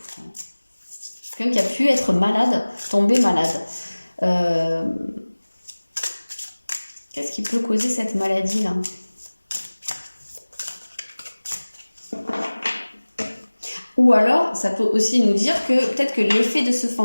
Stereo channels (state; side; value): inverted; both; correlation -1.00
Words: ? Quelqu'un qui a pu être malade, tomber malade. Qu'est-ce qui peut causer cette maladie-là ? Ou alors, ça peut aussi nous dire que peut-être que l'effet de ce